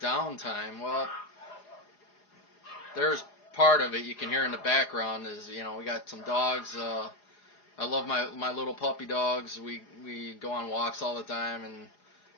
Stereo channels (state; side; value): late; right; 4.9 ms